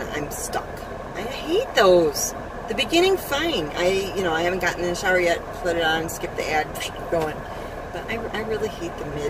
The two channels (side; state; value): both; identical; correlation 1.00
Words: I'm stuck. I hate those. The beginning, fine. I haven't gotten in the shower yet, put it on, skip the ad, going. But I really hate the